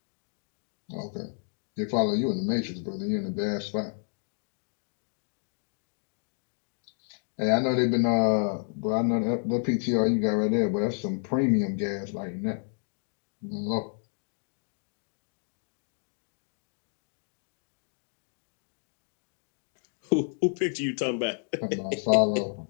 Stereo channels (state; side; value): silent; right; 57 dB below the other